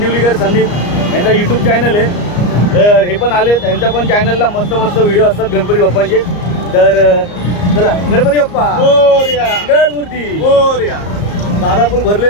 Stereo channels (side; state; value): right; late; 34 ms